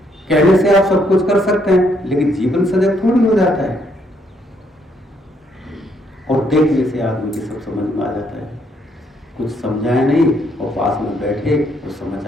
कहने से आप सब कुछ कर सकते हैं, लेकिन जीवन सजग थोड़ी हो जाता है। और देखने से आदमी की सब समझ में आ जाता है, कुछ समझाए नहीं और पास में बैठे तो समझ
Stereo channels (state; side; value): normal; both; correlation 0.72